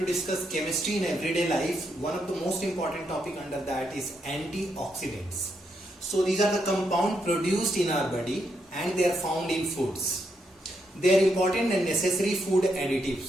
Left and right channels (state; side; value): normal; both; correlation 0.80